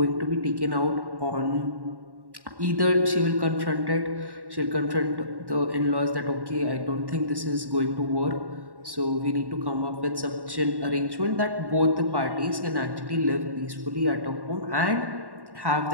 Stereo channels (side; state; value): left; late; 1.1 ms